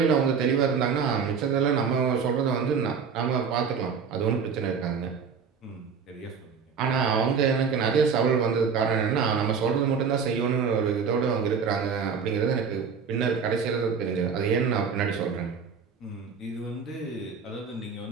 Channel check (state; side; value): quieter; left; 6.1 dB